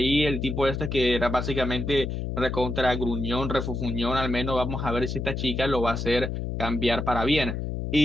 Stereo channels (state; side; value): noise; left; hum, 3 dB below the sound